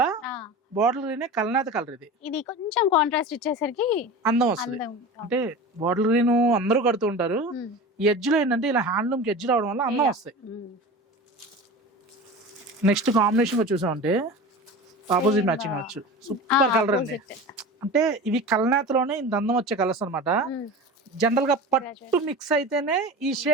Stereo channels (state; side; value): normal; both; correlation 0.32